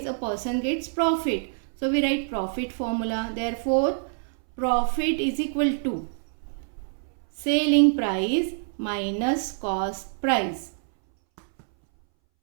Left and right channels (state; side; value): silent; left; 61 dB below the other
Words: a person gets profit. So we write profit formula. Therefore, profit is equal to selling price minus cost price.